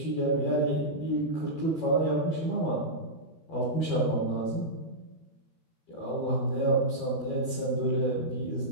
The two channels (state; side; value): late; right; 12 ms